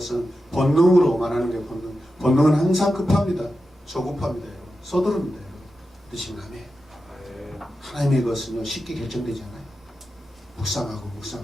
본능으로 말하는 게 본능. 본능은 항상 급합니다. 조급합니다. 여러분. 서두릅니다. 여러분. 믿으시면 아멘. 아멘. 하나님의 것은요 쉽게 결정되지 않아요.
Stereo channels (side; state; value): both; normal; correlation 0.90